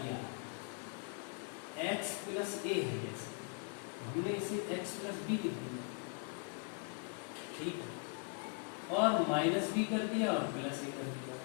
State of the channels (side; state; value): right; quieter; 35.9 dB